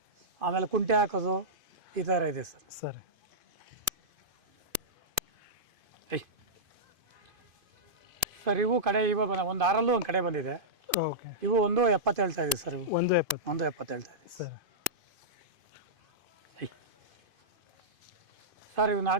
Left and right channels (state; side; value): late; left; 2.5 ms